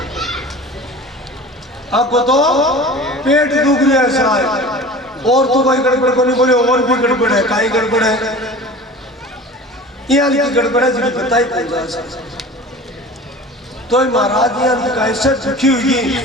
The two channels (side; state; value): both; normal; correlation 0.38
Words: आपको तो पेट दुख रहा है शायद, और तो कोई गड़बड़ को नहीं बोले, और भी गड़बड़ है, काई गड़बड़ है, यहाँ की गड़बड़ है जिन्हें पता ही पड़ता है। तो महाराज यहाँ का ऐसा दुखी हुई,